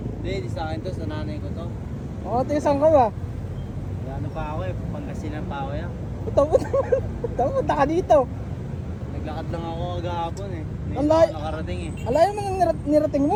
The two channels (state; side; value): identical; both; correlation 1.00